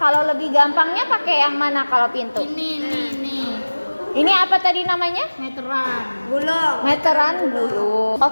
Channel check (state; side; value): inverted; both; correlation -1.00